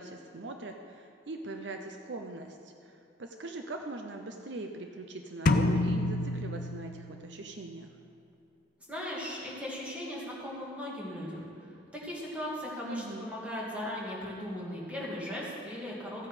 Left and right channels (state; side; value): normal; both; correlation 0.60